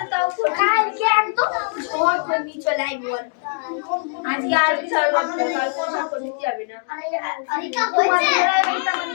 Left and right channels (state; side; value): silent; right; digital silence